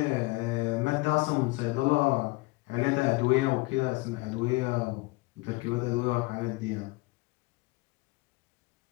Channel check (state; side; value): quieter; right; 23.1 dB